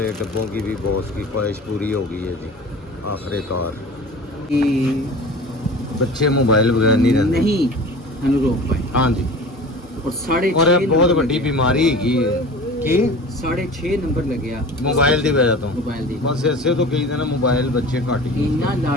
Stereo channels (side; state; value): both; normal; correlation 0.38